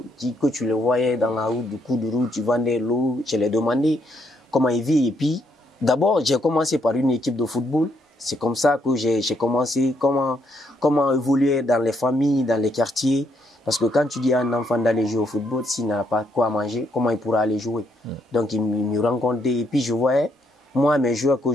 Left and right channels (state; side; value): normal; both; correlation 0.74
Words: que tu les voyais dans la route, du coup de route, tu vendais l'eau. Je les demandais comment ils vivent. Et puis, d'abord, j'ai commencé par une équipe de football. C'est comme ça que j'ai commencé comment évoluer dans les familles, dans les quartiers. Parce que quand tu dis à un enfant d'aller jouer au football, s'il n'a pas quoi manger, comment il pourra aller jouer? Donc, il me rencontrait et puis je voyais, moi, mes joueurs que